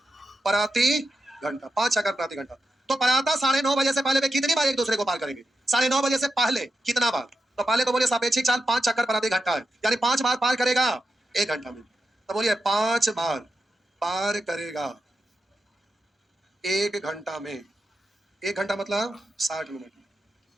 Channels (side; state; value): both; normal; correlation 0.89